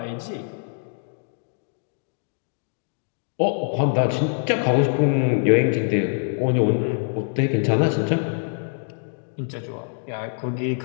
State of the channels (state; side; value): silent; right; digital silence